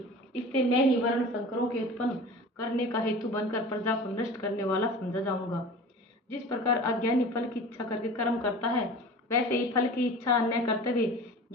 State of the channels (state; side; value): normal; both; correlation 0.38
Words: इससे मैं ही वर्ण संकरों के उत्पन्न करने का हेतु बनकर प्रजा को नष्ट करने वाला समझा जाऊंगा। जिस प्रकार अज्ञानी फल की इच्छा करके कर्म करता है, वैसे ही फल की इच्छा न करते हुए